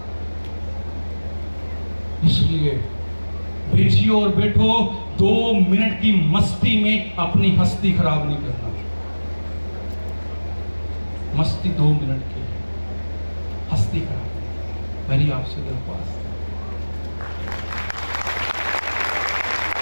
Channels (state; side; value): inverted; both; correlation -1.00